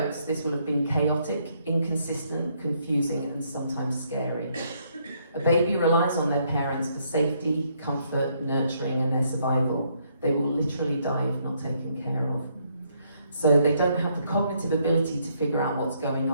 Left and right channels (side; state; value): both; inverted; correlation -0.71